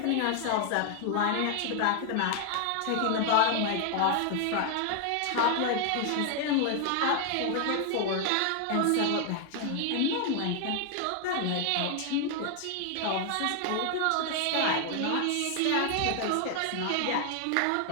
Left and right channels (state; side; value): different; both; correlation 0.00